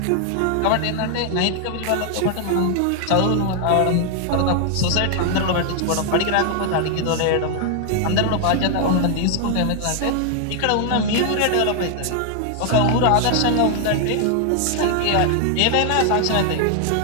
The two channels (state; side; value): different; both; correlation 0.00